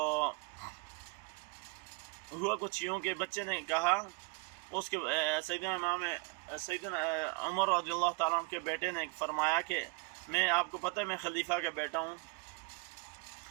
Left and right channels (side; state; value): left; quieter; 30.1 dB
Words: ہوا کچھ یوں کہ بچے نے کہا، اس کے سیدنا عمر رضی اللہ تعالیٰ عنہ کے بیٹے نے فرمایا کہ آپ کو پتہ ہے میں خلیفہ کا بیٹا ہوں